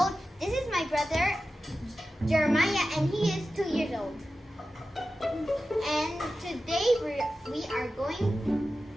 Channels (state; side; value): normal; both; correlation 0.93